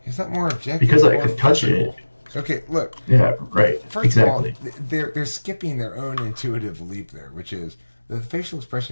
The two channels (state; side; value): inverted; both; correlation -1.00